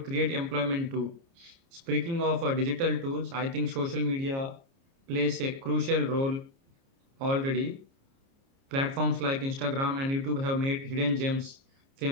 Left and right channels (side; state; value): left; late; 30 ms